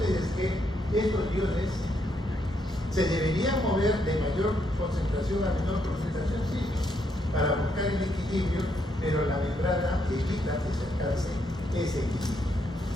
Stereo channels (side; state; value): both; normal; correlation 0.76